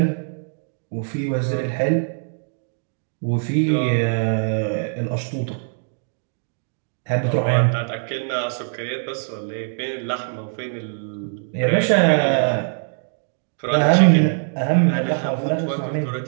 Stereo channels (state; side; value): silent; left; digital silence